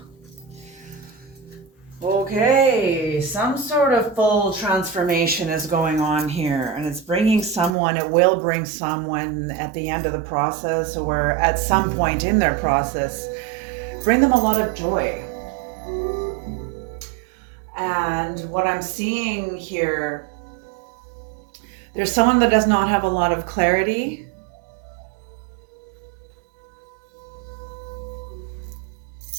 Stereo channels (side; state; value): left; drops out; at 7.8 s